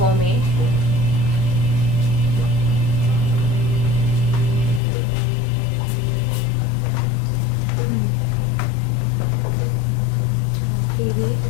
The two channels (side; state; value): right; drops out; at 4.8 s